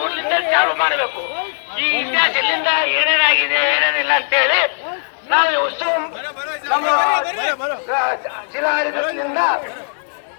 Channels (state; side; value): silent; right; digital silence